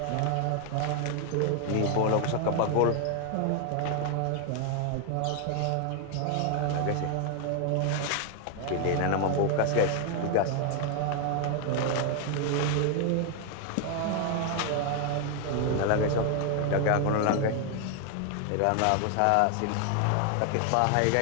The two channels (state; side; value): different; both; correlation 0.01